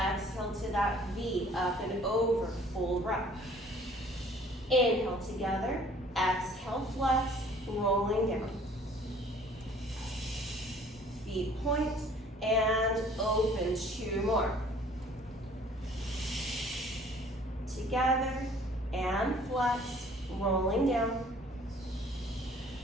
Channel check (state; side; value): normal; both; correlation 0.54